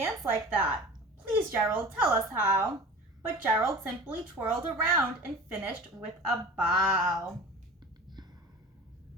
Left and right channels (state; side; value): normal; both; correlation 0.38